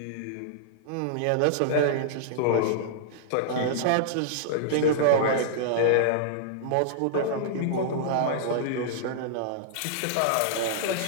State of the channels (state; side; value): different; both; correlation -0.01